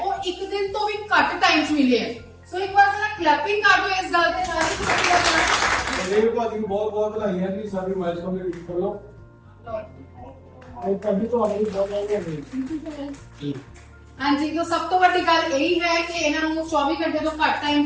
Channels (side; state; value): both; identical; correlation 1.00